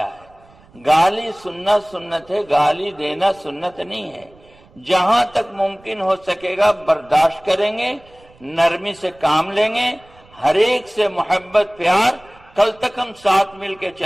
ہے۔ گالی سننا سنت ہے، گالی دینا سنت نہیں ہے۔ جہاں تک ممکن ہو سکے گا برداشت کریں گے، نرمی سے کام لیں گے، ہر ایک سے محبت پیار۔ کل تک ہم ساتھ مل کے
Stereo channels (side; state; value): right; noise; rumble, 28 dB below the sound